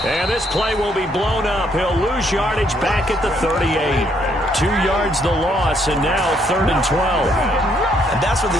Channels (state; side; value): normal; both; correlation 0.70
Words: And this play will be blown up. He'll lose yardage back at the 38. 2 yards the loss, and now 3rd and 12. And that's what